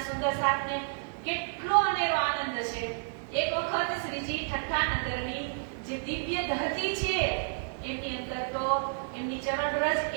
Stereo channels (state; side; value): silent; left; 57 dB below the other